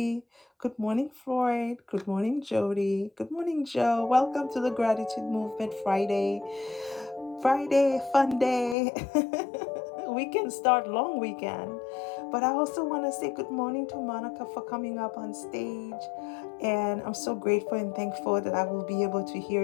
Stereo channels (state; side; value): drops out; right; at 8.8 s